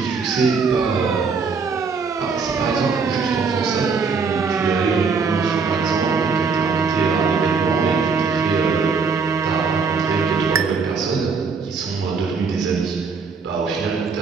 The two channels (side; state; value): left; quieter; 5.0 dB